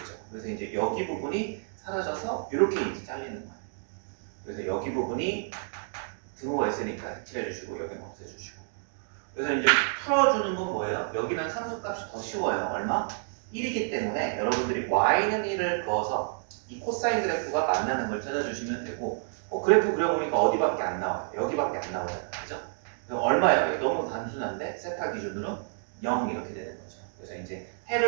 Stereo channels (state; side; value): silent; left; digital silence